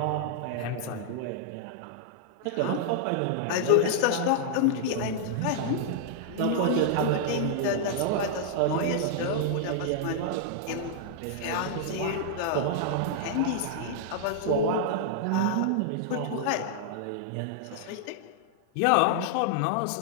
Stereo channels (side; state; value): both; different; correlation -0.01